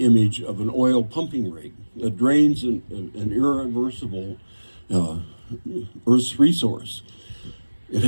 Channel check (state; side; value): inverted; both; correlation -1.00